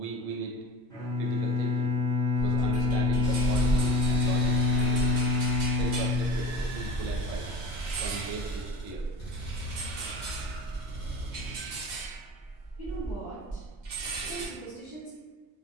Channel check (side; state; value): both; normal; correlation 0.37